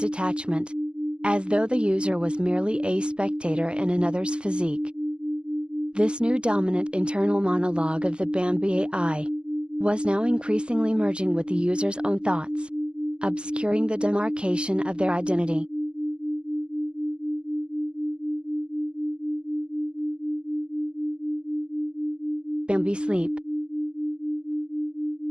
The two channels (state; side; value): late; left; 0.049 ms